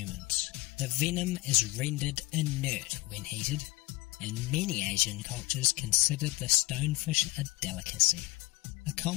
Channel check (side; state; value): right; quieter; 21.5 dB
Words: The venom is rendered inert when heated, and many Asian cultures consider the stonefish a delicacy. A